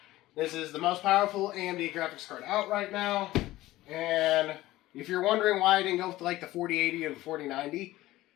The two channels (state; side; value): quieter; right; 16.8 dB